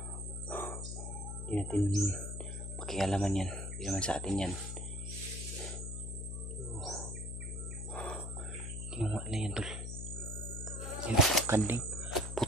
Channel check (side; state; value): left; noise; hum, 5 dB below the sound